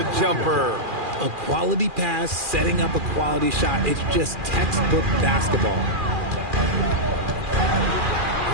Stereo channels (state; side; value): late; left; 2.4 ms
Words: jumper. A quality pass, setting up a quality shot. It's just textbook basketball.